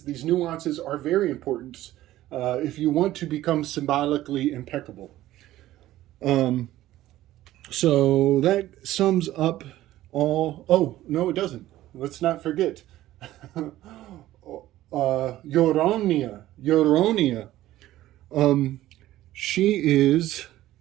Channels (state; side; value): quieter; left; 14.9 dB